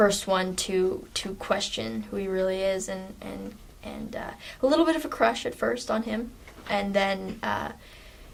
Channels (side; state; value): both; identical; correlation 1.00